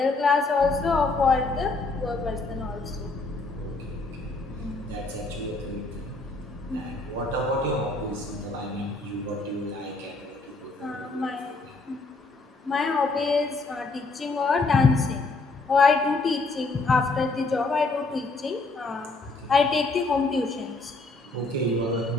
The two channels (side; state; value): right; quieter; 3.5 dB